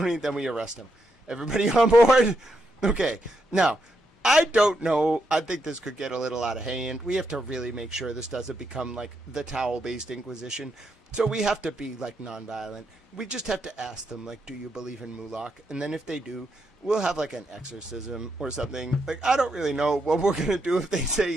then we arrest them. Everybody on board? Okay. Now, I don't know. I think this could get a little out of hand. We have to really make sure this doesn't become, like, the Towel-based Inquisition. So we have to be, like, nonviolent. We just have to ask them, like, do you believe in Mulak? And then if they do, we'll have, like, an exorcism or something. Like, I don't really know what we're going to do if they say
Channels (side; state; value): both; normal; correlation 0.81